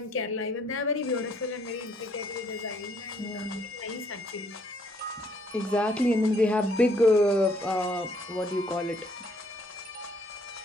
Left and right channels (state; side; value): normal; both; correlation 0.66